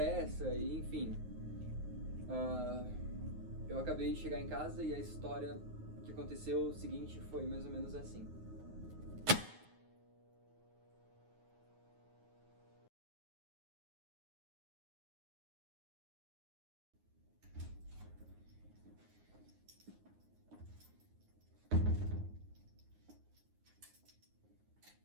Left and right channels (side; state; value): left; late; 9.5 ms